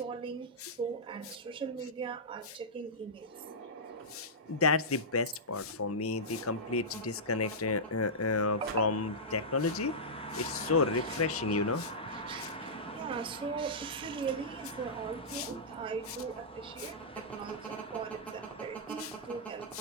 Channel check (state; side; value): normal; both; correlation -0.13